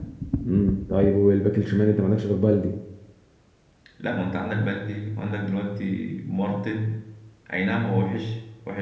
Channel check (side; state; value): both; identical; correlation 1.00